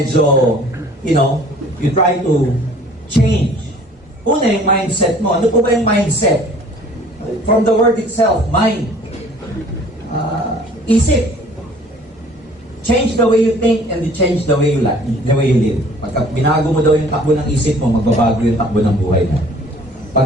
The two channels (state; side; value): normal; both; correlation 0.52